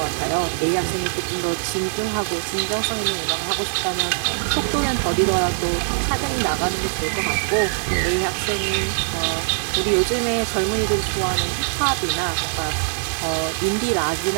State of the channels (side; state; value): left; silent; digital silence